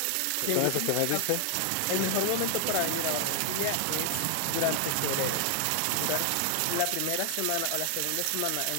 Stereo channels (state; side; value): different; both; correlation 0.00